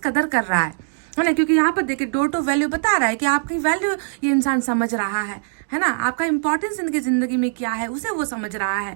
कर रहा है ना। क्योंकि यहाँ पर देखिए डोर टू वैल्यू बता रहा है कि आपकी वैल्यू ये इंसान समझ रहा है ना। आपका इंपॉर्टेंस इनकी जिंदगी में क्या है उसे वो समझ रहा है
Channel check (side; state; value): left; silent; digital silence